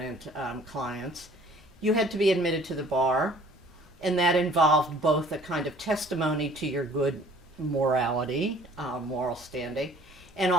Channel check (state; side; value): normal; both; correlation 0.53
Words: clients, you had to be admitted to the bar, and that involved both a kind of testimony to your good morality, moral standing, and